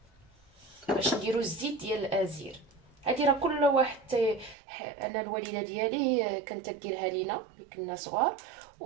باش نديرو الزيت ديال الازير. هادي راه كل واحد انا الوالده ديالي كانت تديرها لينا ملي كنا صغار،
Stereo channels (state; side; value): drops out; left; at 4.5 s